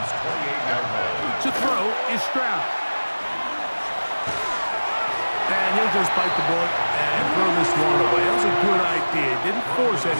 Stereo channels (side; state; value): both; inverted; correlation -1.00